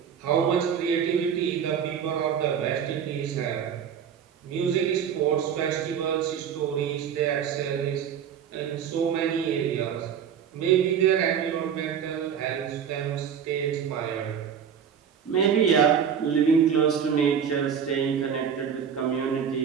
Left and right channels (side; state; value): left; quieter; 7.9 dB